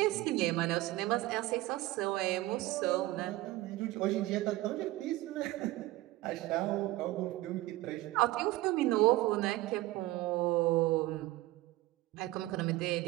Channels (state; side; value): quieter; left; 17.9 dB